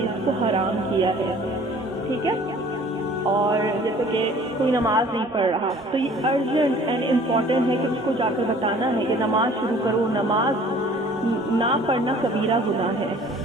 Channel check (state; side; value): normal; both; correlation 0.51